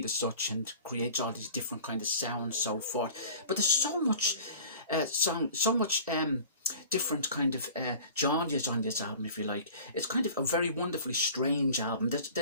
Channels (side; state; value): both; inverted; correlation -0.44